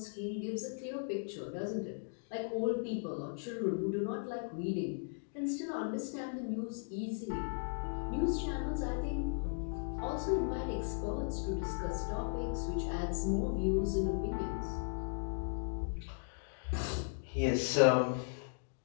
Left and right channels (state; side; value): silent; right; digital silence